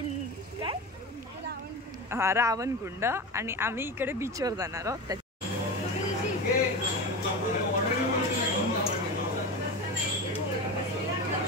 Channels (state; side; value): normal; both; correlation 0.25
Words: काय हां रावणकुंड. आणि आम्ही इकडे बीचवर जाणार आहोत.